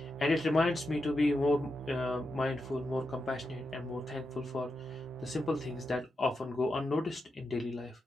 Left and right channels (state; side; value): normal; both; correlation 0.87